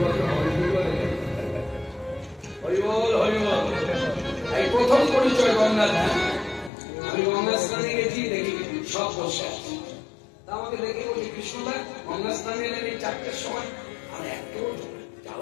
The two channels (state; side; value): drops out; right; at 6.7 s